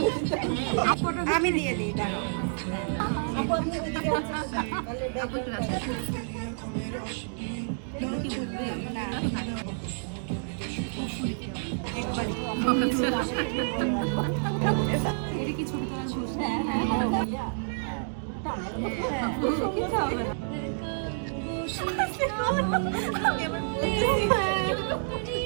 আমি দিয়ে দিই, দাঁড়াও। আপু আপনি ওইদিকে আসেন। আপু একটু কাছে আসেন। কি বুঝবে না এটা কি ছবি তোলা শুরু? হ্যাঁ হ্যাঁ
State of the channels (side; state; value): left; silent; digital silence